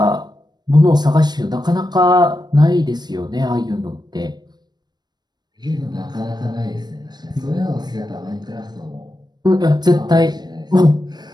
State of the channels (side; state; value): left; late; 0.20 ms